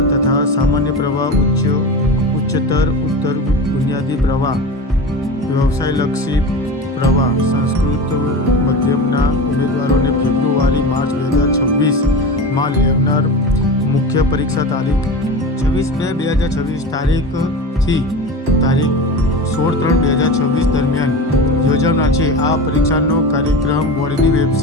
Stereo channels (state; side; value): normal; both; correlation 0.28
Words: તથા સામાન્ય પ્રવાહ ઉચ્ચતર બુનિયાદી પ્રવાહ વ્યવસાયલક્ષી પ્રવાહ સંસ્કૃત મધ્યમના ઉમેદવારોને ફેબ્રુઆરી-માર્ચ 2026માં લેનાર મુખ્ય પરીક્ષા તારીખ 26/2/2026 તારીખથી તારીખ 16/3/2026 દરમિયાન યોજાનાર છે. આ પરીક્ષાનો કાર્યક્રમ બોર્ડની